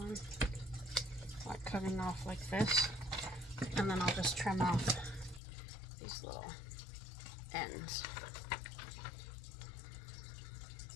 like cutting off like this. And then I'll just trim off these little ends.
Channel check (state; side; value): drops out; right; at 5.4 s